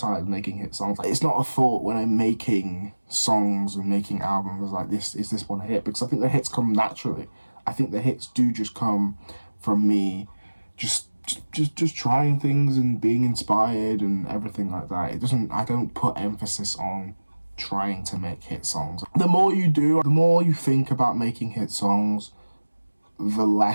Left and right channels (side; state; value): both; inverted; correlation -1.00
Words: making hit songs. It's not a thought when I'm making songs and making albums like this, is this one a hit? Because I think the hits come naturally. I think the hits do just come from me just trying things and being inspired and everything like that. I don't put emphasis on trying to make hit songs. The more you do, the more you think about making hit songs, the